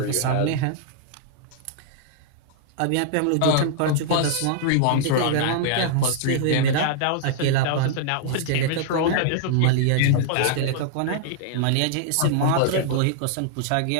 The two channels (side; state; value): both; different; correlation -0.01